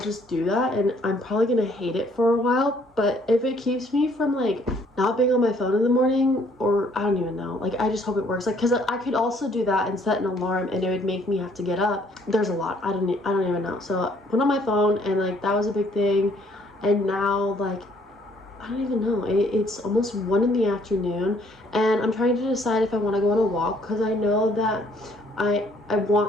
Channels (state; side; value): normal; both; correlation 0.63